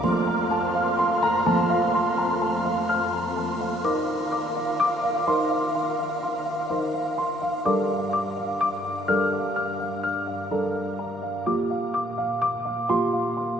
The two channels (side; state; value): both; normal; correlation 0.66